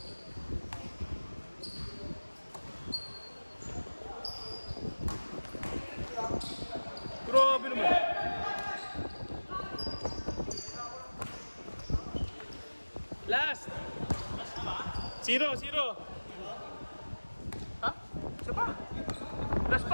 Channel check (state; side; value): inverted; both; correlation -1.00